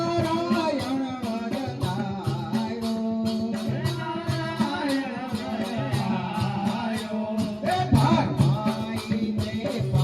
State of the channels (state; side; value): identical; both; correlation 1.00